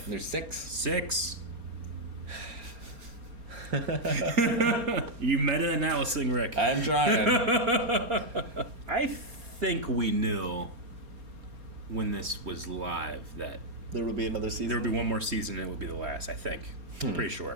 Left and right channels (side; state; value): left; late; 4.3 ms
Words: There's 6. 6. You meta-analysing, Rick. I'm trying. I think we knew when this was live that There will be another season. there would be one more season and it would be the last, I think. I'm pretty